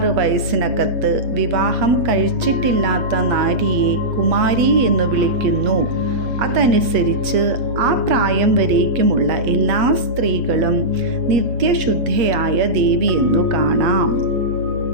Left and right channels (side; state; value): left; late; 8.4 ms